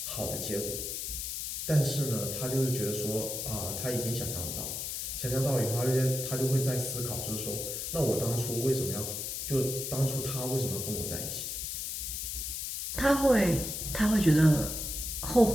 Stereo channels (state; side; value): noise; left; hiss, 4 dB below the sound